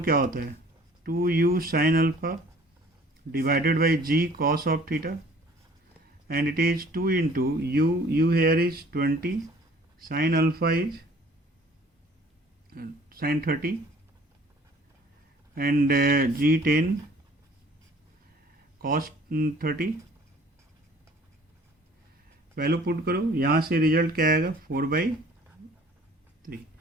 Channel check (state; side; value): normal; both; correlation 0.53